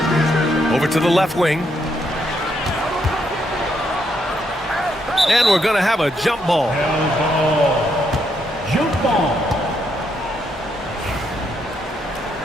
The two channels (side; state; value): both; normal; correlation 0.77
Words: Over to the left wing. And we're going to have a jump ball. Jump ball.